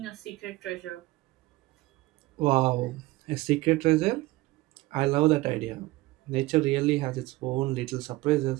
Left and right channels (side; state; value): left; quieter; 19.4 dB